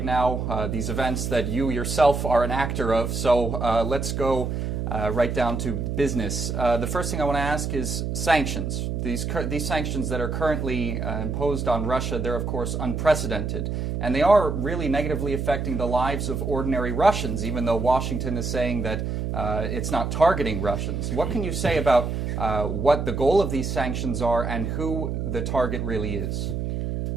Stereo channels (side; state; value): right; noise; hum, 2 dB below the sound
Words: now, these events that you yourself are an actor of. So let's go right down to business. The first thing I want to ask is sanctions. These sanctions that are currently imposed on Russia, they're of course unprecedented. And they are really negatively affecting the lives of ordinary Russians, even though Washington is saying that it's not targeting Russians. What can you say about what the goal of these sanctions are and who the target really is?